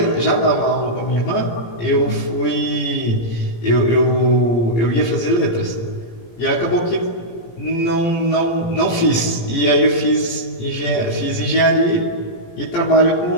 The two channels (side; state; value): right; late; 18 ms